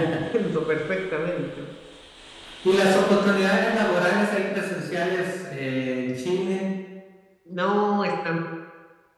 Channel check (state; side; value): identical; both; correlation 1.00